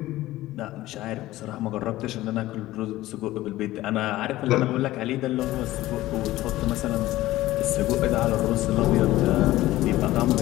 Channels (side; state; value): right; quieter; 16.4 dB